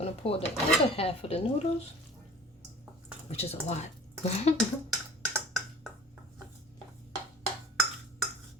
to pour the other half of the noodles, which is a lot.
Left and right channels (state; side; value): normal; both; correlation 0.44